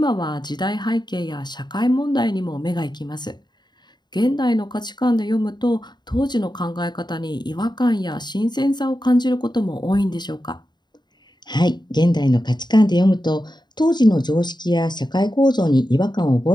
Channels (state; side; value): late; right; 0.21 ms